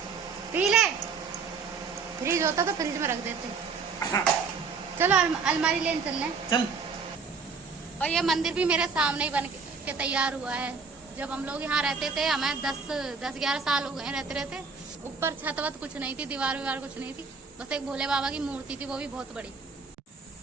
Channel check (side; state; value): left; quieter; 5.0 dB